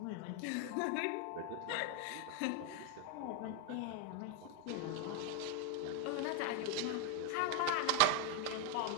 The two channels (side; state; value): both; different; correlation 0.01